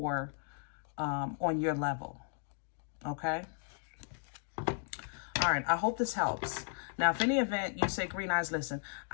on your level. Okay? All right, I hope this helps. Now, if any event you say, Green Eyes, listen,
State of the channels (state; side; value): silent; right; digital silence